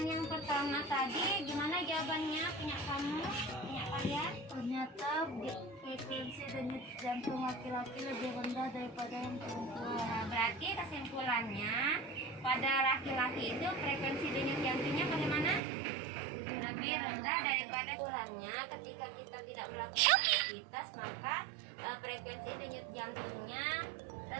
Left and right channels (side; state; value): left; drops out; at 15.6 s